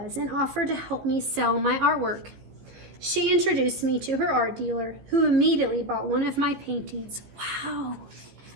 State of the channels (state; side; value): late; left; 15 ms